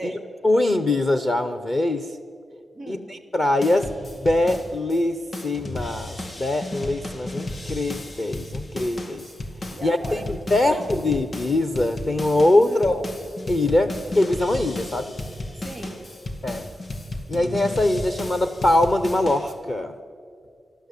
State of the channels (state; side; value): normal; both; correlation 0.90